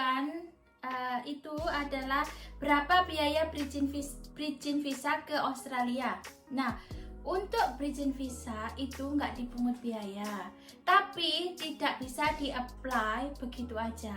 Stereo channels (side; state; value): both; identical; correlation 1.00